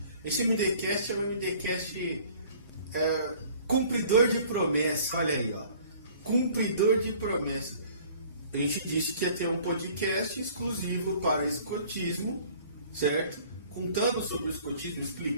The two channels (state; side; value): inverted; both; correlation -0.52